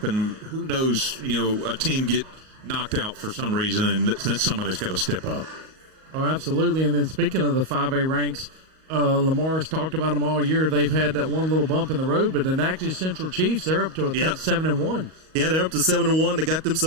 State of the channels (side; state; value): left; late; 38 ms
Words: Who knows, a team get knocked out for some reason, and then somebody's got to step up. Oh, absolutely. And then speaking of the 5A ranks, LaMar's talked about them all year. They've had that one little bump in the road, but the Natchez Central Chiefs, they're up to 7-1. Yeah, they're up to 7-1. They got